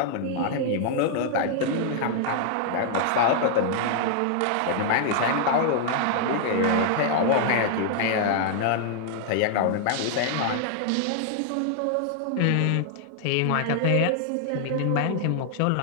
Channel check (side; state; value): both; different; correlation -0.01